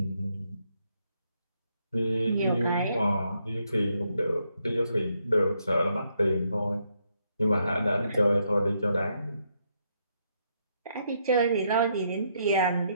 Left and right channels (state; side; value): inverted; both; correlation -0.76